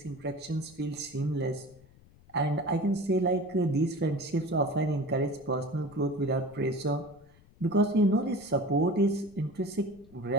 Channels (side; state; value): left; noise; rumble, 26 dB below the sound